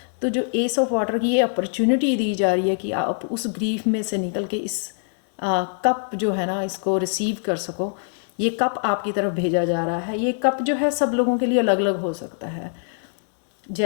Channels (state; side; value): silent; right; digital silence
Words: तो जो एस ऑफ वाटर की ये अपॉर्चुनिटी दी जा रही है कि आप उस ग्रीफ में से निकल के इस कप जो है ना, इसको रिसीव कर सको। ये कप आपकी तरफ भेजा जा रहा है। ये कप जो है सब लोगों के लिए अलग अलग हो सकता है।